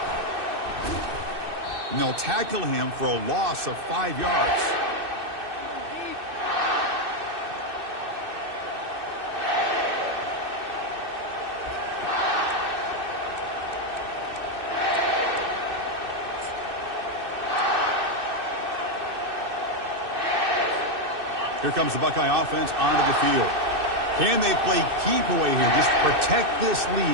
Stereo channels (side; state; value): left; late; 2.6 ms